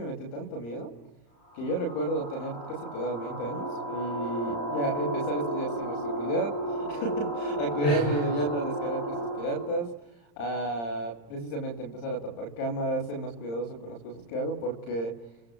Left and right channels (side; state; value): right; late; 35 ms